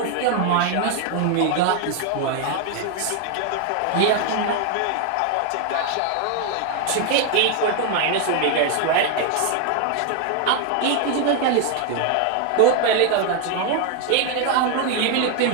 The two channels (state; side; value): different; both; correlation 0.01